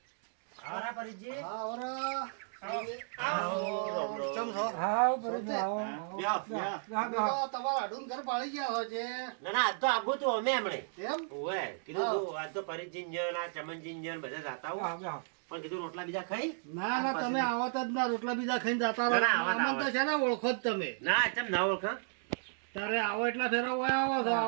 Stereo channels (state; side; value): silent; left; digital silence